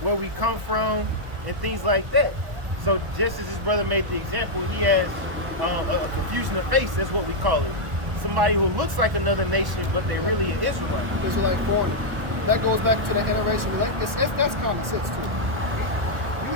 where we come from, and things like that. So just as his brother made the example, he has a confusion of face. That's what we call it. somebody who looks like another nation, but they really an Israelite. Israelite foreigner. That goes back to the interracial relationship. That's common sense too.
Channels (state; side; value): late; left; 1.1 ms